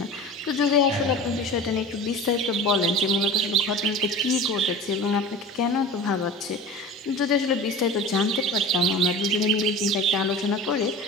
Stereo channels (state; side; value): normal; both; correlation 0.35